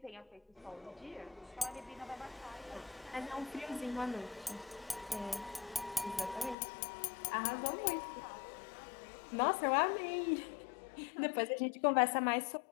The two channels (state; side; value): drops out; right; at 6.6 s